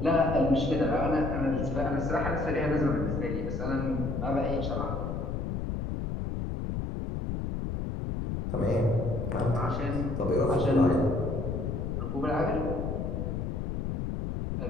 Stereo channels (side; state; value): left; noise; rumble, 2 dB below the sound